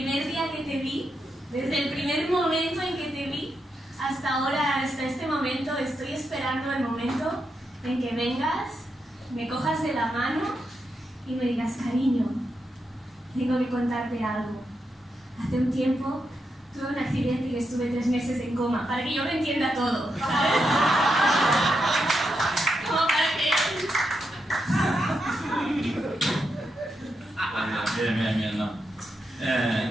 día que te vi, desde el primer momento en que te vi, hasta ahora, hasta este momento, estoy esperando el momento en que vengas, me cojas de la mano y me digas, cariño, tengo que contarte algo. Hace un tiempo tuve un accidente y estuve 3 meses en coma, para que yo lo entienda todo, ¿sabes? Como para que... Bien, no.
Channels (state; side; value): normal; both; correlation 0.84